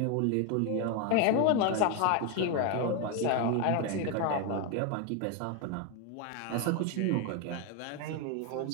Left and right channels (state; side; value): different; both; correlation 0.01